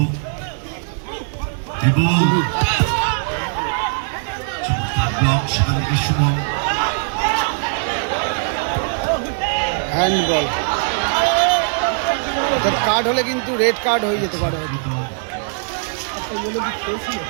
ইবু চমৎকার ব্লক সেখান থেকে সুমন হ্যান্ডবল অর্থাৎ কার্ড হলে কিন্তু রেড কার্ড হয়ে যেতে পারে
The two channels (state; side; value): silent; left; digital silence